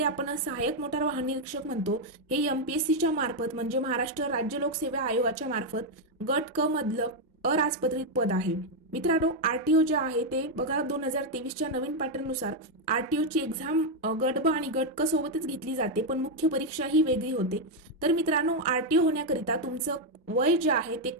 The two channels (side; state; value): both; normal; correlation 0.01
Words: आपण सहाय्यक मोटार वाहन निरीक्षक म्हणतो, हे एमपीएससीच्या मार्फत म्हणजे महाराष्ट्र राज्य लोकसेवा आयोगाच्या मार्फत गट क मधलं अराजपत्रित पद आहे. मित्रांनो, आरटीओ जे आहे ते बघा, 2023च्या नवीन पॅटर्ननुसार आरटीओची एक्झाम गट ब आणि गट क सोबतच घेतली जाते, पण मुख्य परीक्षा ही वेगळी होते. तर मित्रांनो, आरटीओ होण्याकरिता तुमचं वय जे आहे ते